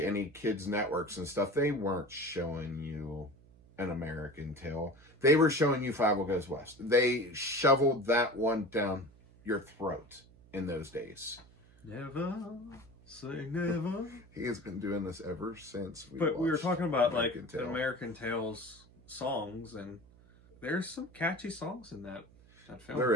any kids' networks and stuff, they weren't showing you An American Tail. They were showing you Fievel Goes West. They shoveled that one down your throat in those days. Never say never. He has been doing this ever since we were talking about American Tail. American Tail's songs, and there's some catchy songs in that film.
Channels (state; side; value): noise; right; hum, 25 dB below the sound